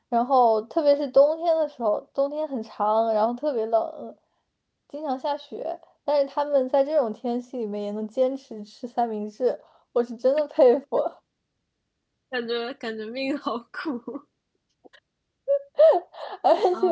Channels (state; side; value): identical; both; correlation 1.00